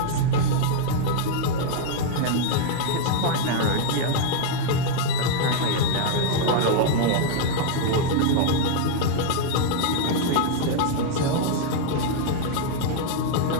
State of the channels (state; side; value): different; both; correlation -0.01